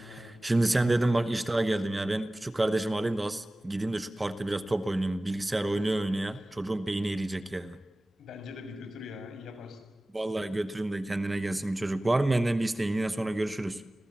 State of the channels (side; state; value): both; normal; correlation 0.97